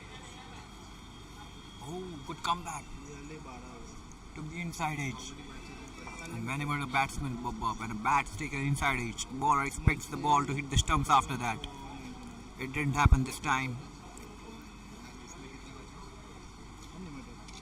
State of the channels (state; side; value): identical; both; correlation 1.00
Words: Oh, good comeback. Took the inside edge. And whenever the batsman when a bat's taken inside edge, the bowler expects the ball to hit the stumps after that. It didn't happen this time.